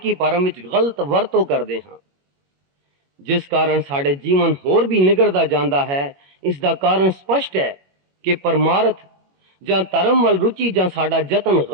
ਭਰਮ ਵਿੱਚ ਗਲਤ ਵਰਤੋਂ ਕਰਦੇ ਹਾਂ, ਜਿਸ ਕਾਰਨ ਸਾਡੇ ਜੀਵਨ ਹੋਰ ਵੀ ਨਿਗੜਦਾ ਜਾਂਦਾ ਹੈ। ਇਸ ਦਾ ਕਾਰਨ ਸਪਸ਼ਟ ਹੈ ਕਿ ਪਰਮਾਰਥ ਜਾਂ ਧਰਮ ਵੱਲ ਰੁਚੀ ਜਾਂ ਸਾਡਾ ਯਤਨ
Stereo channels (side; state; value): left; late; 21 ms